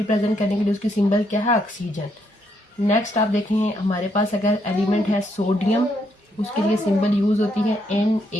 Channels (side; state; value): both; normal; correlation 0.75